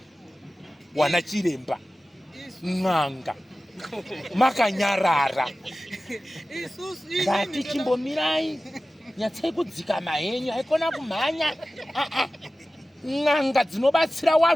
wana chiremba n'anga makanyarara ndati chimbomirai nyatsai kudzika mahenyu haikona kumhanya n'anga dzinobatsira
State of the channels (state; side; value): normal; both; correlation 0.96